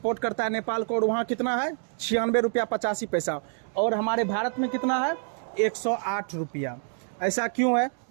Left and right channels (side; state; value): left; silent; digital silence